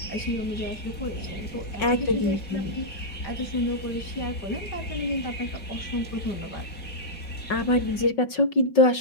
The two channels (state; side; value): late; right; 5.4 ms